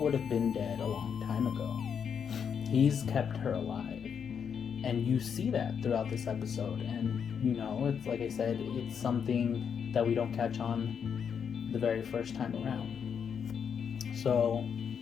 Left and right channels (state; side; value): quieter; right; 7.2 dB